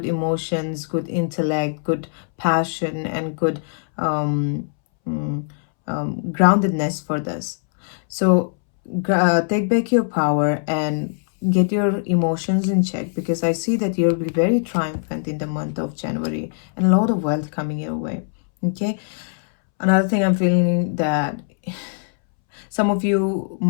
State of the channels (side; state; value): right; silent; 65 dB below the other